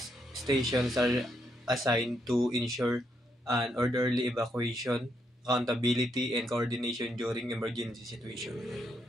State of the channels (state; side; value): normal; both; correlation 0.77